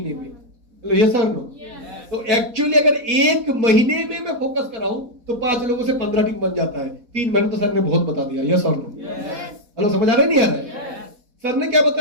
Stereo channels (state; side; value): late; left; 4.1 ms